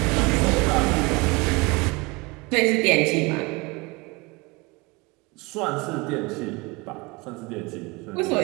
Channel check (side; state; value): left; quieter; 26.1 dB